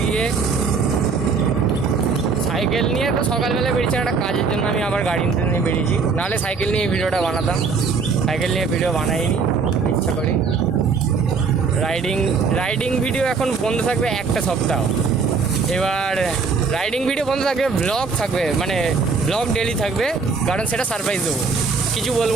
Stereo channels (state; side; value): quieter; left; 4.9 dB